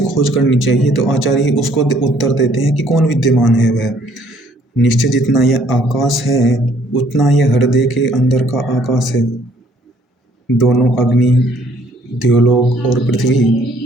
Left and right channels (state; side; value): normal; both; correlation 0.62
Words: खोज करनी चाहिए। तो आचार्य उसको उत्तर देते हैं कि कौन विद्यमान है वह। निश्चय जितना यह आकाश है उतना यह हृदय के अंदर का आकाश है। दोनों अग्नि, द्योलोक और पृथ्वी,